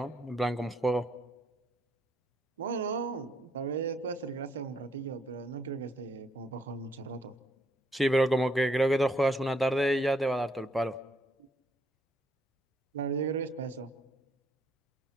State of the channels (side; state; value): both; normal; correlation 0.72